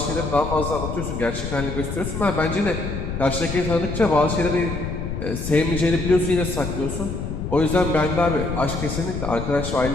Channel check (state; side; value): noise; left; rumble, 5 dB below the sound